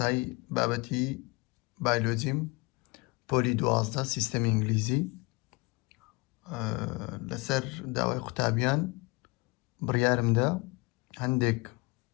بابەتی بایۆلۆجیم پۆلی 12 سیستەمی ئینگلیزی. لەسەر داوای قوتابیان بڕیارمدا هەندێک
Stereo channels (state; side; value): quieter; right; 25.5 dB